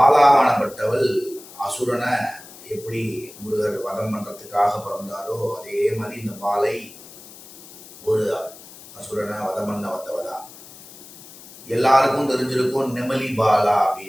அசுரனை எப்படி முருகர் வதம் பண்ணுறதுக்காக பிறந்தாரோ அதே மாதிரி இந்த பாலை ஒரு அசுரனை வதம் பண்ண வந்தவதான். எல்லாருக்கும் தெரிஞ்சிருக்கும் நெமலி பாலா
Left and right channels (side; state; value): left; noise; hiss, 19 dB below the sound